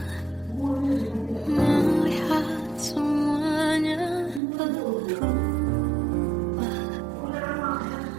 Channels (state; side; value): drops out; left; at 4.4 s